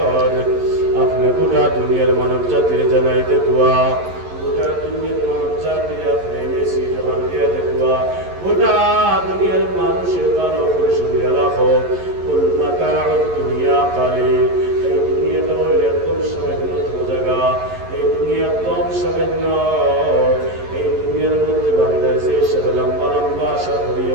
আপনি গোটা দুনিয়ার মানব জাতির জানাইতে দোয়া, গোটা দুনিয়ার মানব জাতির আপনি মেসি জবান দিয়ে দোয়া, গোটা দুনিয়ার মানুষের ভালো করে শুনিয়ে রাখো। কুল মাতাউদ দুনিয়া কালিল, এই দুনিয়াটা হইল একদম সামান্য জায়গা, এই দুনিয়া কম সামান্য। এই দুনিয়ার মধ্যে বান্দায় যে সব লম্বা লম্বা আশা করিয়ে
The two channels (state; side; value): late; left; 11 ms